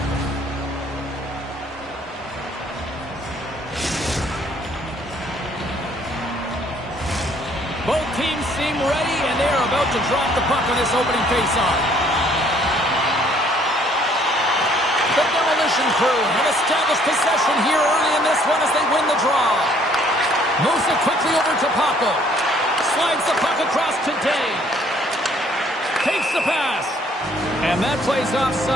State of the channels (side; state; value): both; normal; correlation 0.62